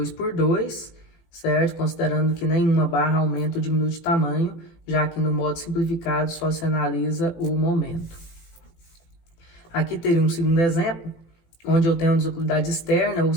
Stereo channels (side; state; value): right; late; 18 ms